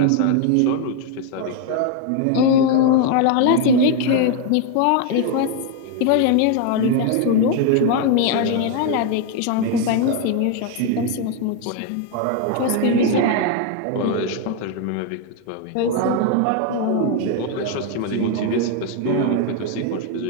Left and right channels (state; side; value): different; both; correlation 0.01